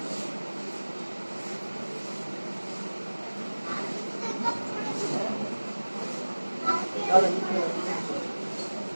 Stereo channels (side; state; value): both; inverted; correlation -1.00